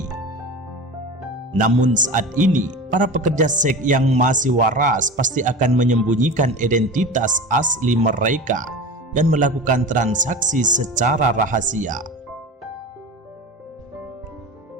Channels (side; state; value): both; normal; correlation 0.31